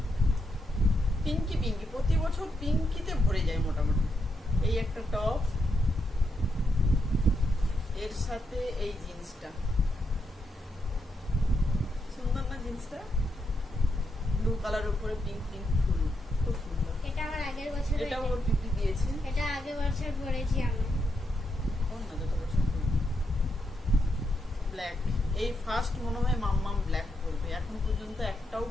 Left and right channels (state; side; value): normal; both; correlation 0.81